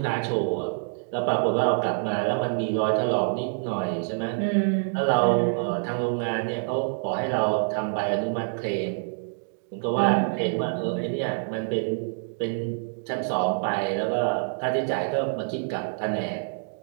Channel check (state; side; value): silent; left; digital silence